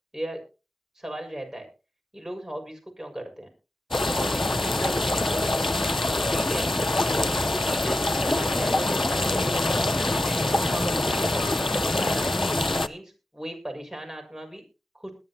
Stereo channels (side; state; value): both; normal; correlation 0.89